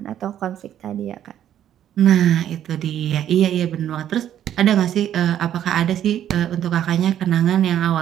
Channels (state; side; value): quieter; left; 10.7 dB